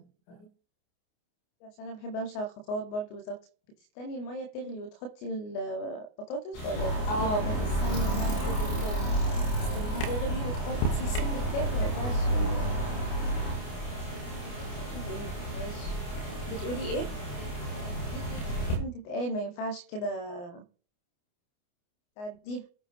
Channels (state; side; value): late; right; 29 ms